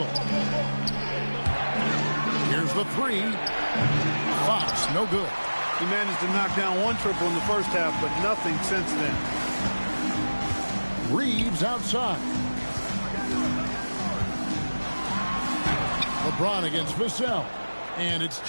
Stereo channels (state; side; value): inverted; both; correlation -1.00